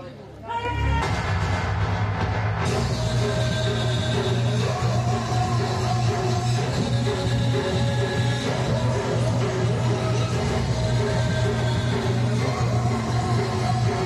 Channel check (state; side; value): identical; both; correlation 1.00